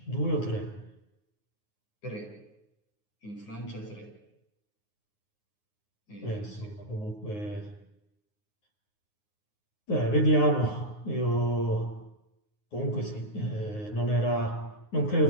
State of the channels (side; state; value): right; late; 9.5 ms